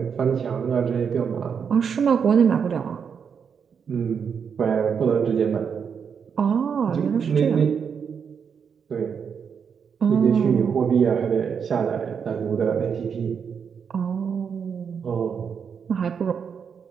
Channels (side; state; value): left; quieter; 6.8 dB